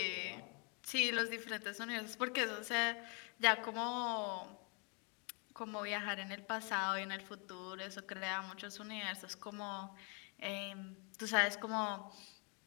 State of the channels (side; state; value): right; quieter; 35.5 dB